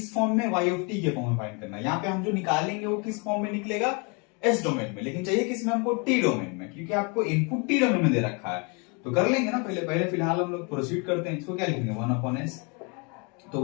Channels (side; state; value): right; quieter; 32.7 dB